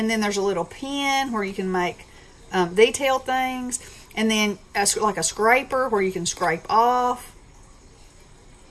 then there's a little pen where you can make detailed things, and then like a scraper where you can scrape off.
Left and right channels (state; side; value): identical; both; correlation 1.00